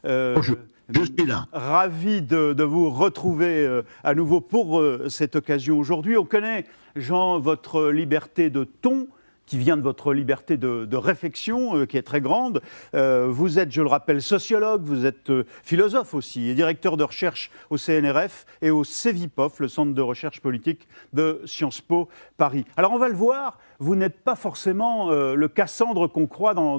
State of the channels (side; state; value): both; inverted; correlation -1.00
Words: Bonjour, je suis là. Ravi de vous retrouver à nouveau pour cette occasion aujourd'hui. On connaît, Jean, votre liberté de ton, qui vient de votre liberté de réflexion, qui est très grande. Vous êtes, je le rappelle, sociologue, vous êtes philosophe aussi, et directeur de recherche au CNRF et au CEVIPOF, le Centre de recherche politique de Sciences Po Paris. Alors on va le voir, vous n'êtes pas forcément le Cassandre qu'on croit